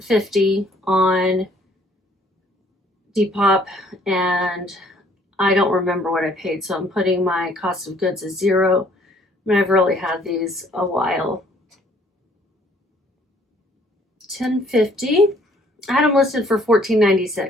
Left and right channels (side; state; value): both; normal; correlation 0.61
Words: on Depop, and I don't remember what I paid, so I'm putting my cost of goods as 0. I mean, I've really had these a while. $10.50. I had them listed for